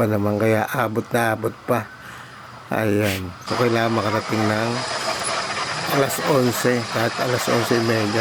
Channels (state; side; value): identical; both; correlation 1.00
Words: naman, kaya abot na abot pa. Ayan. So, kailangan makarating ng alas 11. Kahit alas